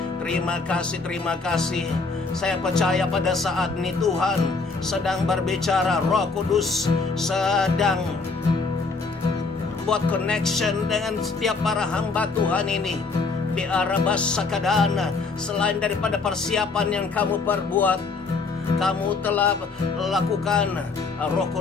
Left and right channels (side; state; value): right; quieter; 4.2 dB